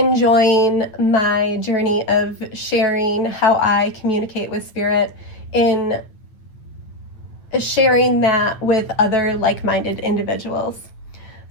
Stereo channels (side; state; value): right; late; 9.0 ms